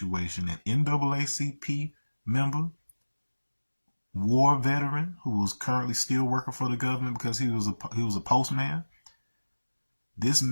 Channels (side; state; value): both; inverted; correlation -1.00